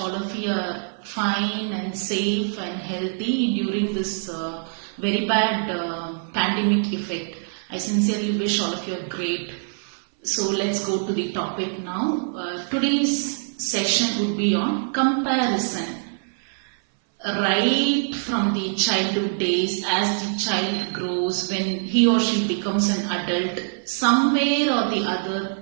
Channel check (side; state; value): left; silent; 59 dB below the other